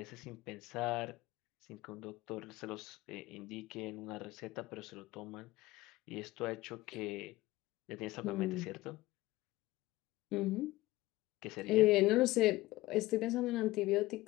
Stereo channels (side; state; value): right; quieter; 18.5 dB